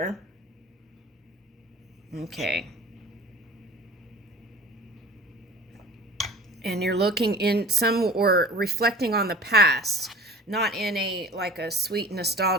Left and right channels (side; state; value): both; normal; correlation 0.42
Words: Okay. And you're looking in some or reflecting on the past, not in a like a sweet